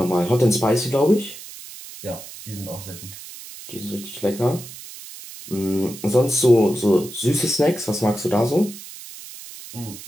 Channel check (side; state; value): right; noise; hiss, 14 dB below the sound